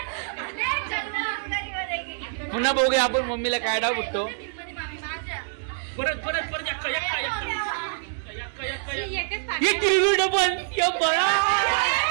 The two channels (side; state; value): left; silent; 61 dB below the other